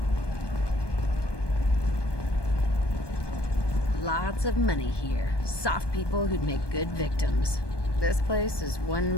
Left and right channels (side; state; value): right; late; 1.2 ms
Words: Lots of money here. Soft people who'd make good victims. This place is